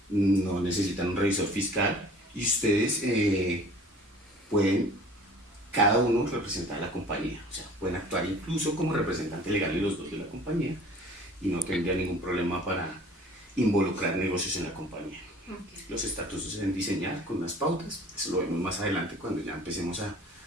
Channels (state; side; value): normal; both; correlation 0.48